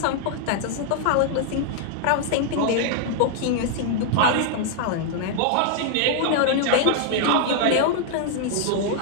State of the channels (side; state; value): both; different; correlation 0.00